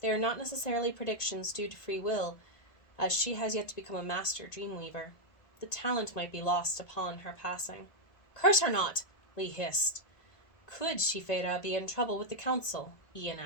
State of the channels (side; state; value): right; late; 1.9 ms